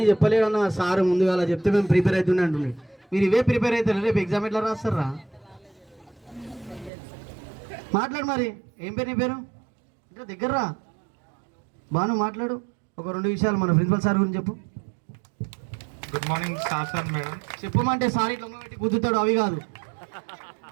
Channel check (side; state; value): left; drops out; at 6.9 s